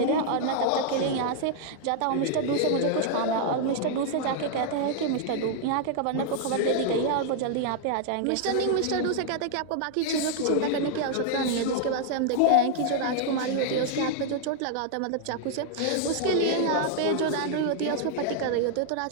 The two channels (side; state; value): both; different; correlation 0.00